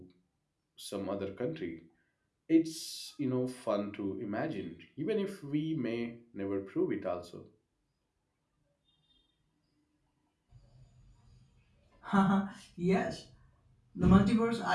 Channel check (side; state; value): both; identical; correlation 1.00